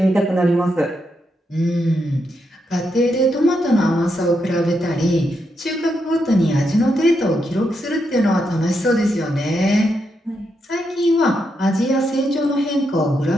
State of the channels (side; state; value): both; normal; correlation 0.82